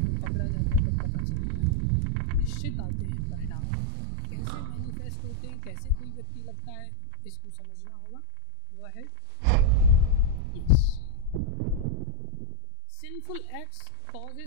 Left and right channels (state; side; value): different; both; correlation -0.01